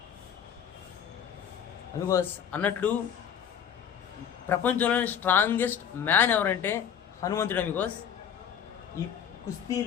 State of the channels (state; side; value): quieter; right; 8.5 dB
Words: అమిగోస్ అన్నట్లు ప్రపంచంలోని స్ట్రాంగెస్ట్ మ్యాన్ ఎవరంటే హనుమంతుడు అమిగోస్. ఈ